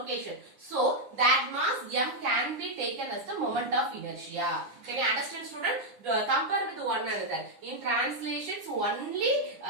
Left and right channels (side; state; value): left; late; 9.8 ms